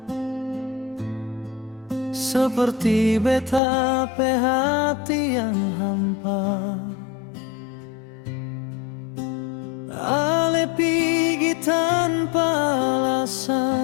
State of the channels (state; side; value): drops out; right; at 3.6 s